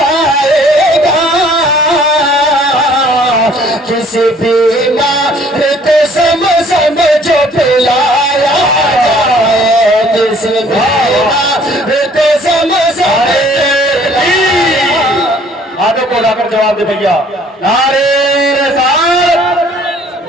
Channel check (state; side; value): normal; both; correlation 0.57